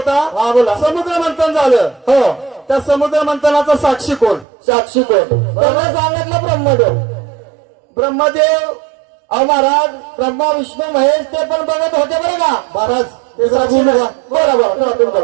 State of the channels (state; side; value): drops out; left; at 4.5 s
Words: हा बोला. समुद्र मंथन झालं. हो त्या समुद्र मंथनाचा साक्षी कोण? साक्षी कोण? त्यांना सांगितलं ब्रह्मदेव. ब्रह्मदेव. अहो महाराज ब्रह्मा विष्णू महेश ते पण बघत होते बरं का महाराज ते साक्षी बोलू नाही. का?